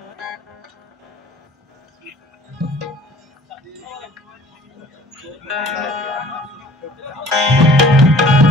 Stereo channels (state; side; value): normal; both; correlation 0.51